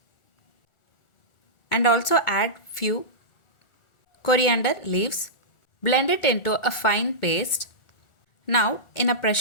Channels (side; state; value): right; late; 1.4 ms